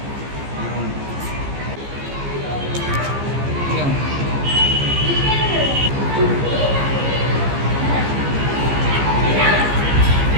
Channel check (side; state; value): left; late; 15 ms